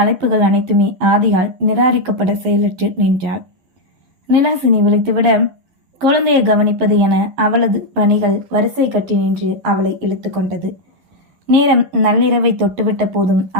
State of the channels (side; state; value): left; late; 11 ms